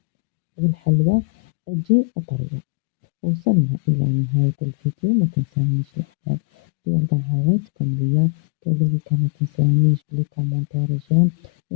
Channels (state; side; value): quieter; right; 36.3 dB